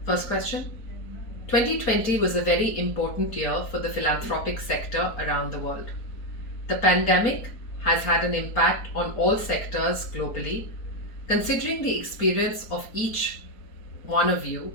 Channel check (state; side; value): late; right; 4.3 ms